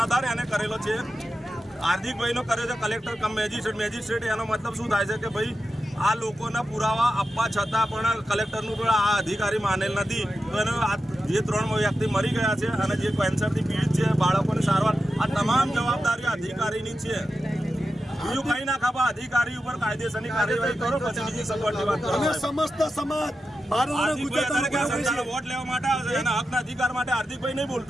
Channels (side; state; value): both; normal; correlation 0.90